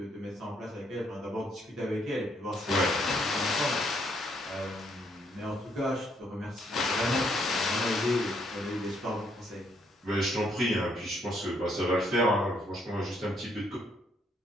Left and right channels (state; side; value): normal; both; correlation 0.71